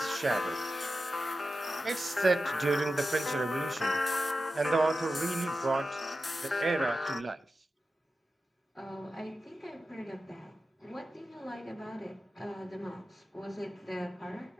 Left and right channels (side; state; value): both; normal; correlation 0.92